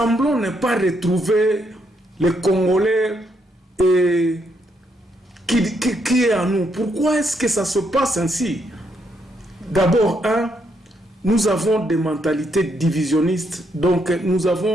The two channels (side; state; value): both; normal; correlation 0.76